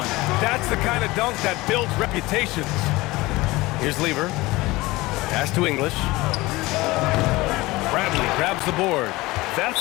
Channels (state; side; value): quieter; right; 20.6 dB